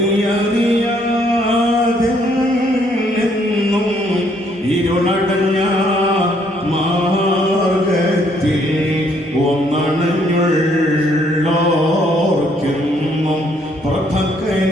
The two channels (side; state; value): both; normal; correlation 0.68